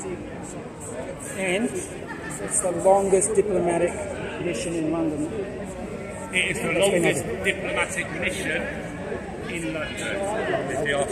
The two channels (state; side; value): identical; both; correlation 1.00